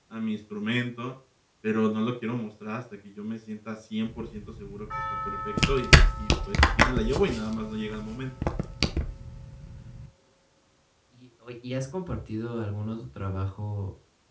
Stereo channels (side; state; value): both; identical; correlation 1.00